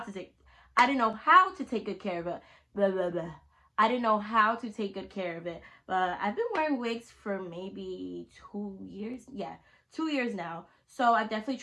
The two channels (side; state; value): both; identical; correlation 1.00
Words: to take good care of it. Blah, blah, blah. I didn't know how to take good care of it. But I've been wearing wigs for maybe 2 years. Yeah, 2 years now. So I've definitely